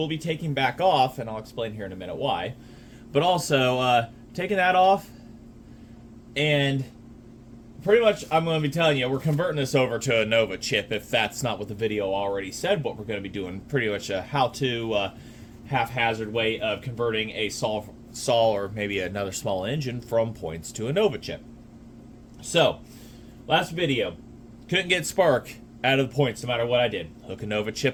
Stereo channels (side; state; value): both; identical; correlation 1.00